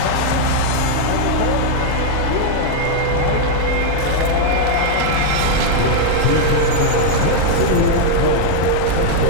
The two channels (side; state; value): both; different; correlation -0.01